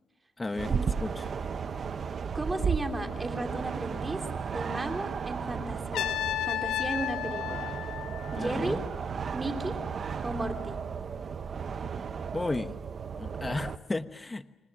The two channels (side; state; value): both; normal; correlation 0.78